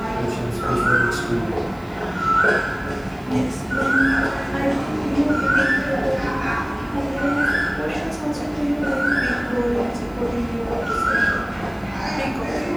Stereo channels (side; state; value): right; noise; hiss, 29 dB below the sound